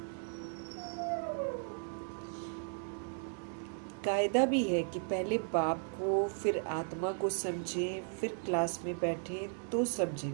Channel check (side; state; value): left; silent; 54 dB below the other